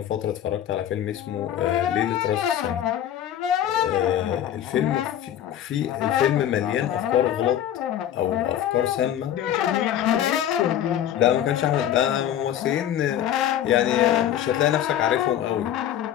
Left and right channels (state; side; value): quieter; right; 10.9 dB